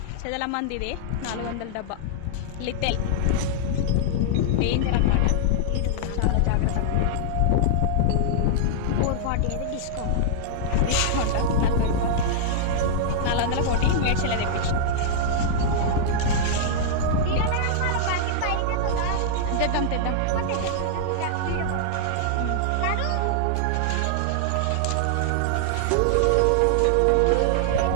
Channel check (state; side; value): different; both; correlation -0.01